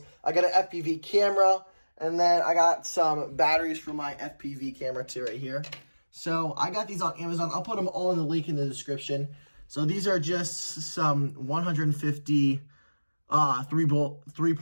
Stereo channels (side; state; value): both; inverted; correlation -1.00